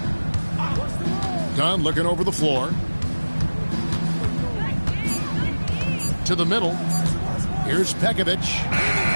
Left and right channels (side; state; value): both; inverted; correlation -1.00